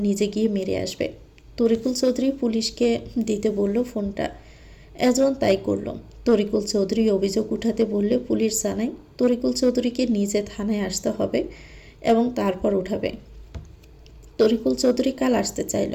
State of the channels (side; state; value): both; identical; correlation 1.00